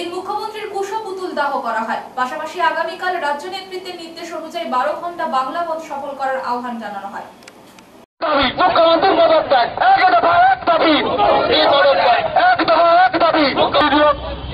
মুখ্যমন্ত্রীর কুশ পুতুল দাহ করা হয়। পাশাপাশি আগামীকাল রাজ্য নেতৃত্বের নির্দেশ অনুযায়ী 12 ঘন্টা বাংলা বন্ধ সফল করার আহ্বান জানানো হয়। মুখ্যমন্ত্রী পদত্যাগ, এক দফা এক দাবি, এই পদত্যাগ এক দফা এক দাবি,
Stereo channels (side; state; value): both; identical; correlation 1.00